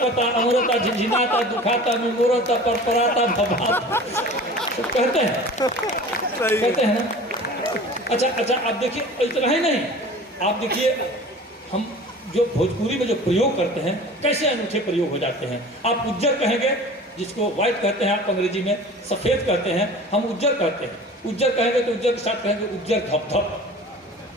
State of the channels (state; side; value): normal; both; correlation 0.41